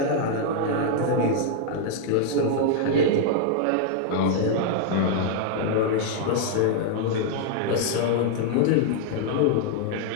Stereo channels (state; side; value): different; both; correlation 0.00